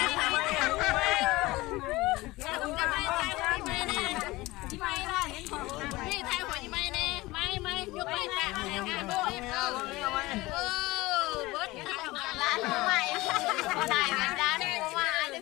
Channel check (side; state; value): right; quieter; 20.2 dB